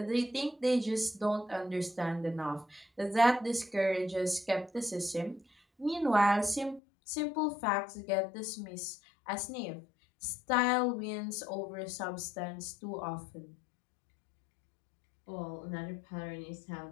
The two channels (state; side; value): drops out; right; at 6.8 s